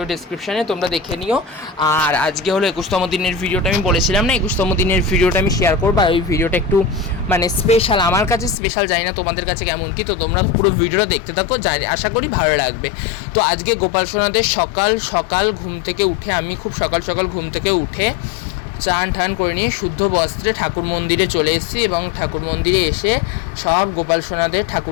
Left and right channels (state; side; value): drops out; right; at 8.6 s